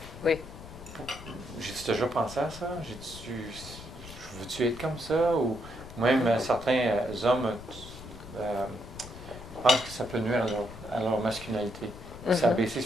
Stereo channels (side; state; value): left; noise; rumble, 15 dB below the sound